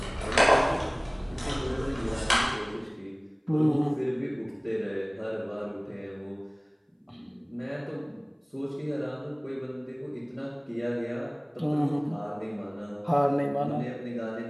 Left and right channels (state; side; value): identical; both; correlation 1.00